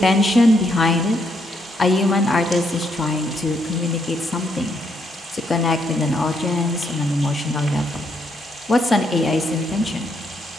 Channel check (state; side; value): normal; both; correlation 0.75